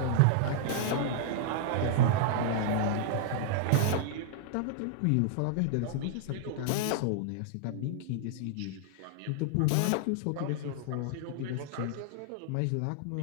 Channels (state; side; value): different; both; correlation -0.01